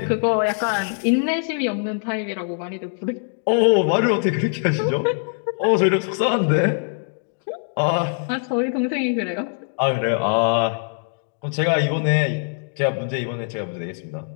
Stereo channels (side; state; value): right; silent; 64 dB below the other